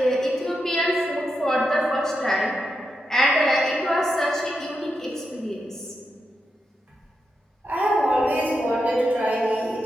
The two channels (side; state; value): both; normal; correlation 0.86